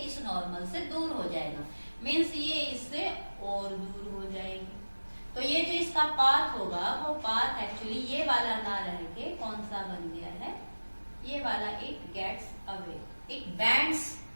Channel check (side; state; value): both; inverted; correlation -1.00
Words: इस नॉर्मल से दूर हो जाएगा, मीन्स ये इससे और दूर हो जाएगी। तो ये जो इसका पाथ होगा वो पाथ एक्चुअली ये वाला ना रह के कौन सा बन गया है, ये वाला, it gets away, it bends